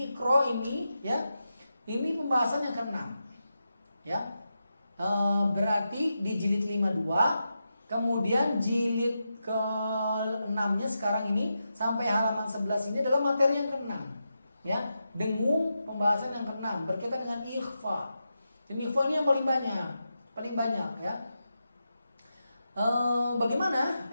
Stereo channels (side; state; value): both; inverted; correlation -0.88